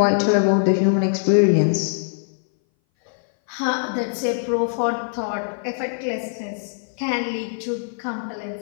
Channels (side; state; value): right; silent; 60 dB below the other